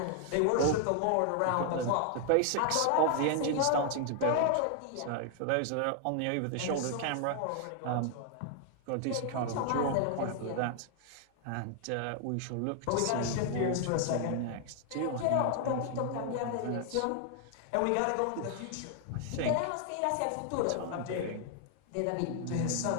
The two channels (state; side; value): different; both; correlation 0.00